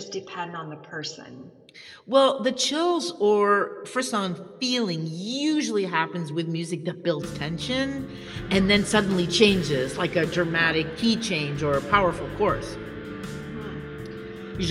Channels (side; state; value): both; identical; correlation 1.00